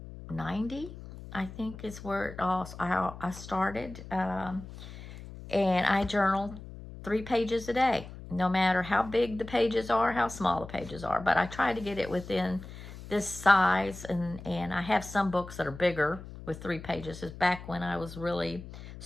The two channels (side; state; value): left; noise; hum, 13 dB below the sound